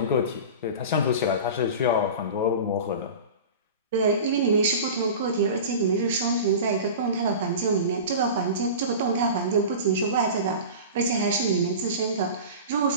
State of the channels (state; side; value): inverted; both; correlation -0.33